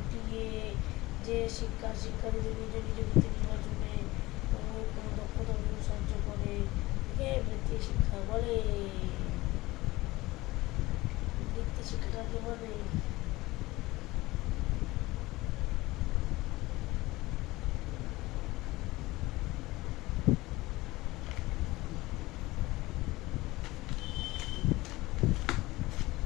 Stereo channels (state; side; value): quieter; right; 19.7 dB